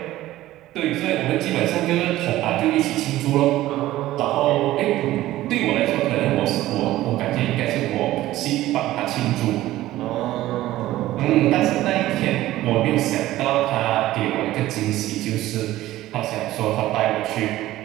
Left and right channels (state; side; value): quieter; left; 15.5 dB